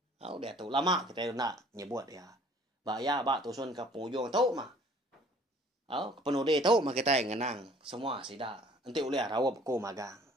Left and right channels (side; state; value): both; normal; correlation 0.54